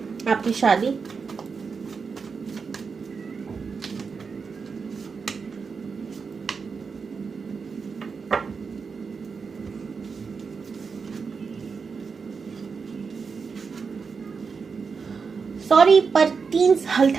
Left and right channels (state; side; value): quieter; left; 5.3 dB